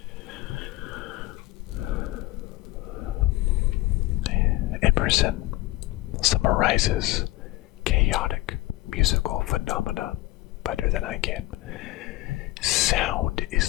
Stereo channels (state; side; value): quieter; right; 18.7 dB